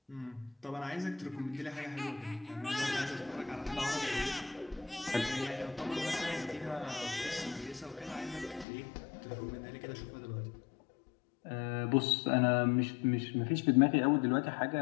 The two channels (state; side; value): drops out; right; at 8.7 s